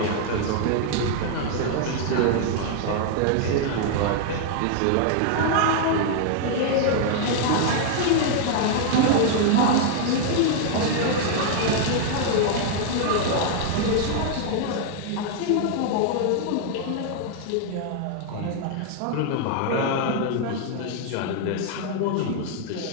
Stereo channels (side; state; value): both; different; correlation 0.00